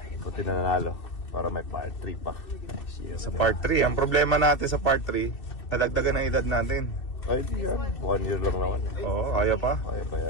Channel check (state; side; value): late; right; 2.6 ms